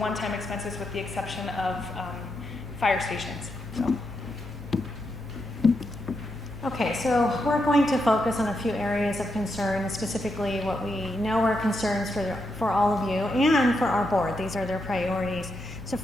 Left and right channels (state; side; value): noise; left; hum, 23 dB below the sound